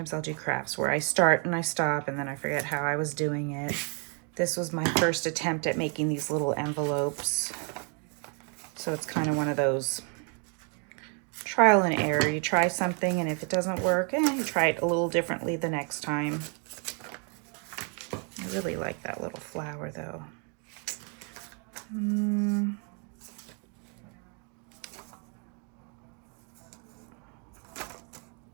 I'll do crafts where I start and I stop and then I forget how I was doing it. This was my first attempt at making these little envelopes. So it's kind of one of those trial and error. You try something, and if it doesn't work, you try it a little differently the next time. I really like that little flower though.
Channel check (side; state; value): left; quieter; 38.6 dB